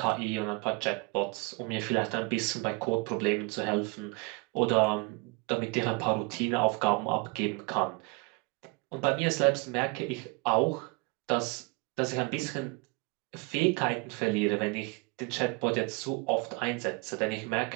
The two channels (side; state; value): left; quieter; 27.2 dB